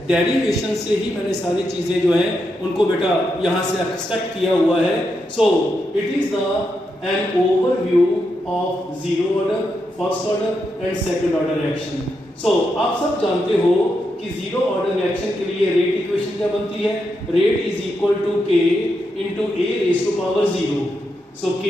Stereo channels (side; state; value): both; normal; correlation 0.84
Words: डेरिवेशन से ही मैंने सारी चीजें जो हैं उनको बेटा यहाँ से एक्सट्रैक्ट किया हुआ है. So it is the an overview of zero order, first order and second order reaction. So आप सब जानते हो कि जीरो ऑर्डर रिएक्शन के लिए रेट इक्वेशन क्या बनती है? Rate is equal to k into a raise to power 0. So